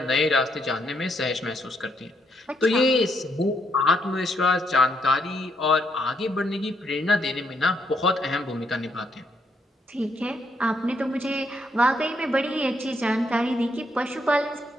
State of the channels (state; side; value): normal; both; correlation 0.75